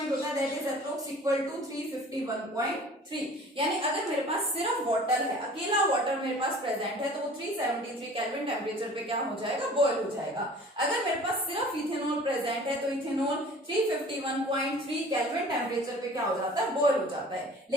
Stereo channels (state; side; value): normal; both; correlation 0.46